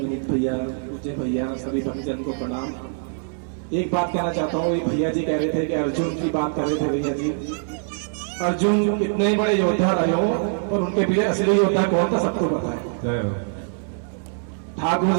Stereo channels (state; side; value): silent; left; 63 dB below the other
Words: भैया, पूज्य भैया, सभी भक्तजन को प्रणाम। एक बात कहना चाहता हूँ, भैया जी कह रहे थे कि अर्जुन की बात कर रहे थे भैया जी। अर्जुन कितने ही बड़े योद्धा रहे हो पर उनके पीछे असली योद्धा कौन था सबको पता है। ठाकुर